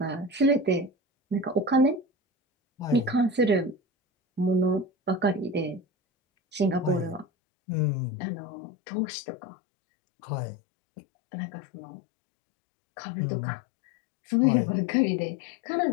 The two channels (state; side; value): drops out; right; at 7.2 s